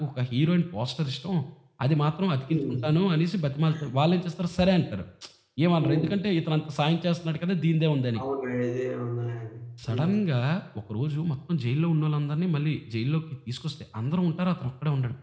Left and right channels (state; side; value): identical; both; correlation 1.00